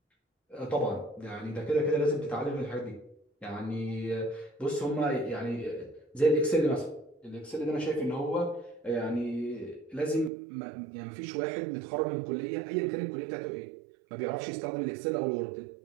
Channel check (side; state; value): left; drops out; at 10.3 s